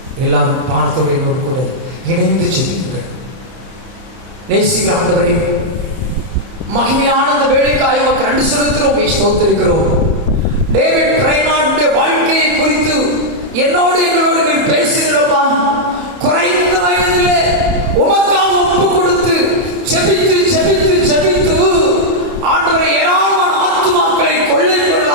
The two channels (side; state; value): left; late; 31 ms